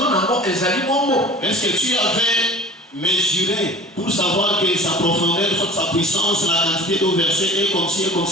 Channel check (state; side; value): normal; both; correlation 0.42